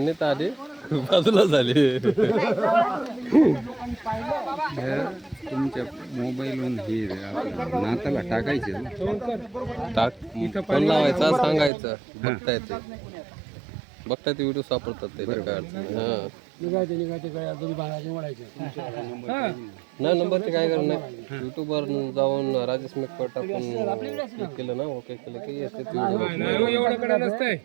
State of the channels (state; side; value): drops out; left; at 11.7 s